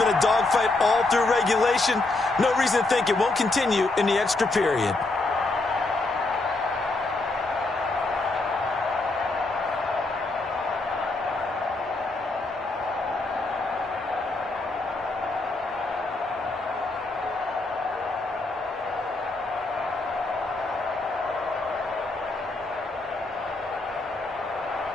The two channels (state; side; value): quieter; right; 3.2 dB